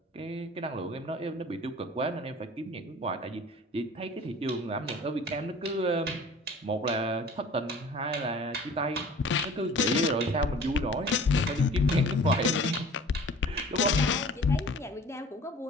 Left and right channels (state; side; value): normal; both; correlation 0.46